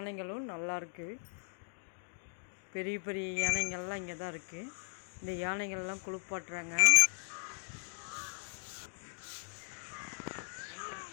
நல்லாயிருக்கு. பெரிய பெரிய யானைகள்லாம் இங்கே தான் இருக்குது. இந்த யானைகள்லாம் குளிப்பாட்டுறாங்க.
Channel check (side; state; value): right; silent; digital silence